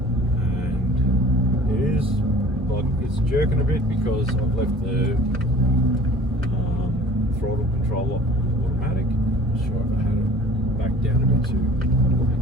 and it is like it's jerking a bit because I've left the throttle control automatic. I'm not sure if I had it back down a bit to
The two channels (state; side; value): normal; both; correlation 0.47